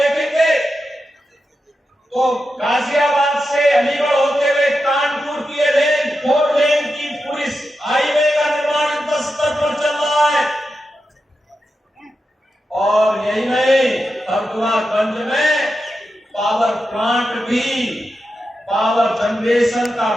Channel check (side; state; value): both; normal; correlation 0.89